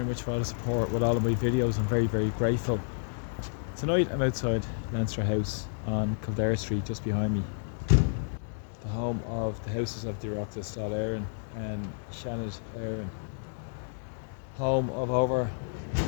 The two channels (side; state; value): right; silent; digital silence